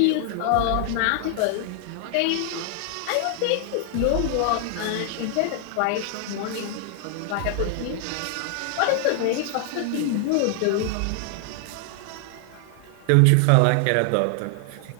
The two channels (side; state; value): both; different; correlation 0.00